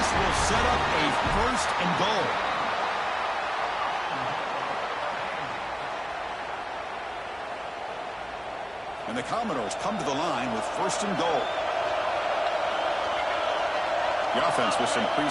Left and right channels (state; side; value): identical; both; correlation 1.00